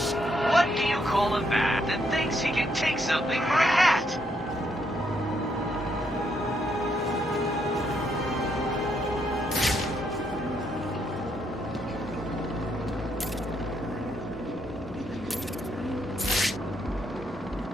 What do you call a man that thinks he can take something for a hat?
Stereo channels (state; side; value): normal; both; correlation 0.75